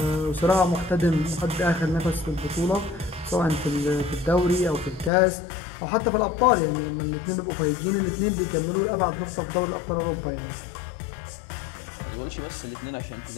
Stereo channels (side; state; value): right; drops out; at 5.1 s